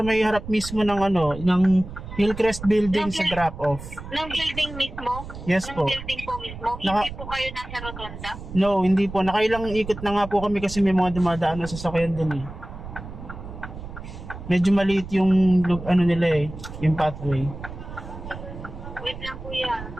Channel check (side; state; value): right; noise; rumble, 12 dB below the sound